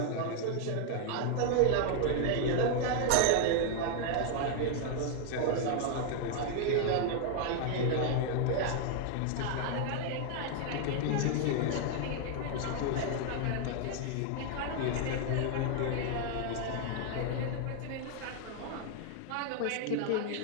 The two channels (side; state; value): both; different; correlation 0.00